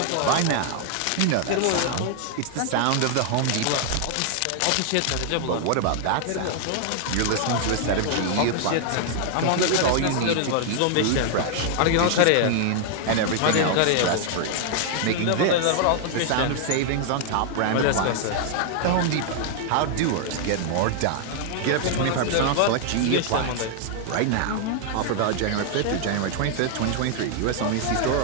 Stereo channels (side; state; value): both; different; correlation 0.00